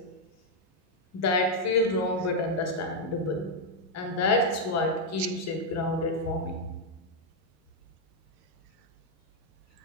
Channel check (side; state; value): both; normal; correlation -0.01